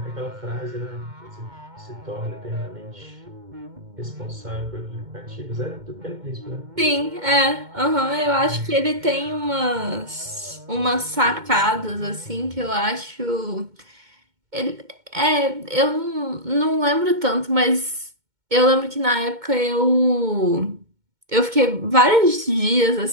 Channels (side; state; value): left; late; 2.2 ms